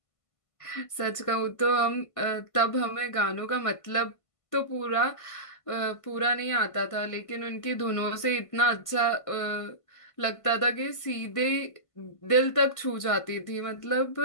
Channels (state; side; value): late; right; 1.5 ms